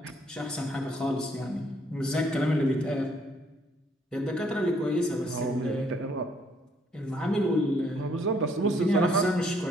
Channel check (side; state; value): both; normal; correlation 0.67